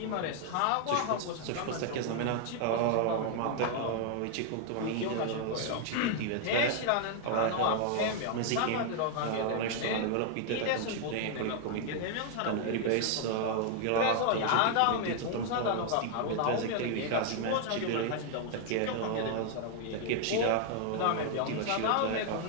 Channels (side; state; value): both; different; correlation 0.00